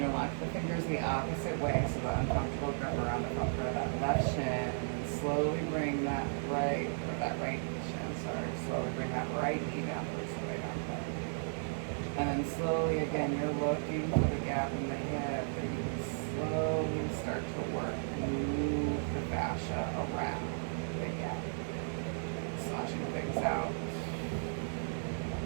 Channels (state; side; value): silent; left; 54 dB below the other